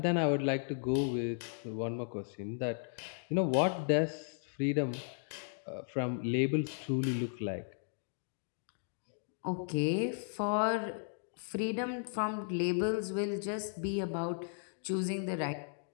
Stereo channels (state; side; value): silent; right; digital silence